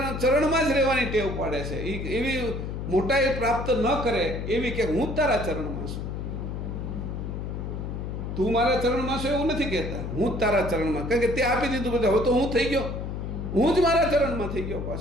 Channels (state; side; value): noise; left; hum, 5 dB below the sound